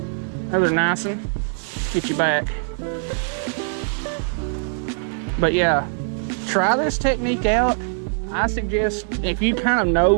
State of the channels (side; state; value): left; silent; 64 dB below the other